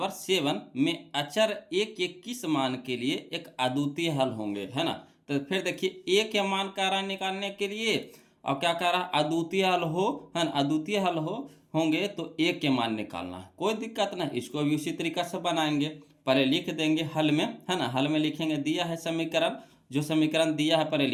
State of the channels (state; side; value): identical; both; correlation 1.00